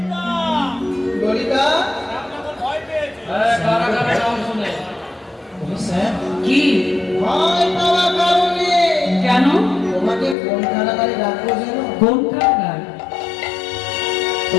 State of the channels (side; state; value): right; drops out; at 10.4 s